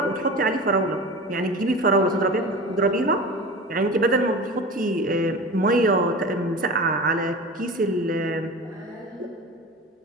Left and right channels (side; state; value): both; normal; correlation 0.33